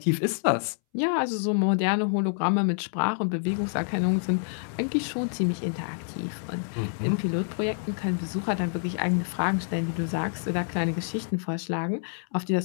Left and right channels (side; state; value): right; silent; 60 dB below the other